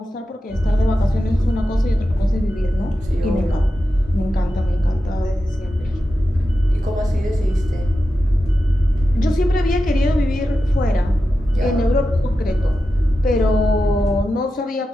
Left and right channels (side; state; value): both; normal; correlation 0.91